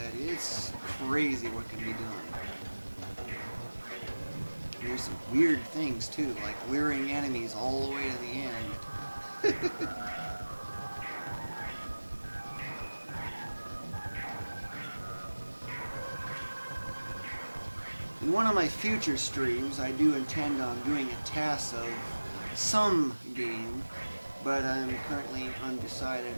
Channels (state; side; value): inverted; both; correlation -1.00